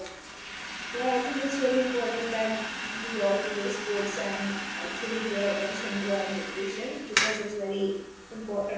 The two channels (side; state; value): both; identical; correlation 1.00